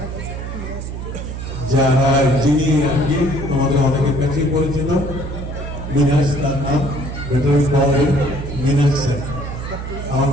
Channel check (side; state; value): right; noise; hum, 7 dB below the sound